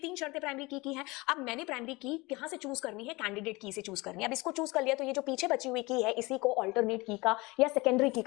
शर्तें प्राइमरी की है। अब मैंने प्राइमरी की कहां से चूज करनी है, कैंडिडेट की से चूज करनी है। अब इसको चूज कर लिया तो ये जो पीछे बची हुई की है इसी को अल्टरनेट की का या सेकेंडरी की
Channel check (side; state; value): right; quieter; 23.6 dB